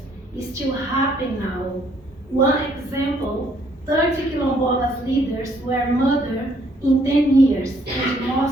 is still happening now. One example, 30 Quilombolas leaders were murdered in 10 years, and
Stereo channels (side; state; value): both; normal; correlation 0.66